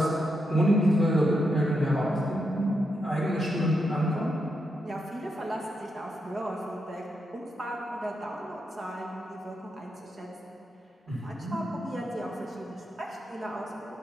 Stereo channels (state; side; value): normal; both; correlation 0.83